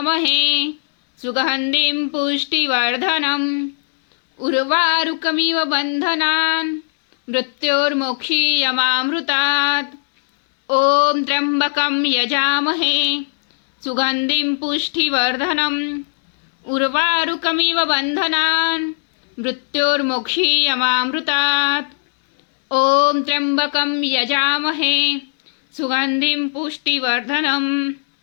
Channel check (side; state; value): right; silent; digital silence